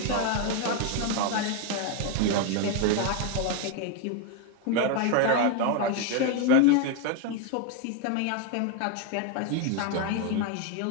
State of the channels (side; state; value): both; different; correlation 0.01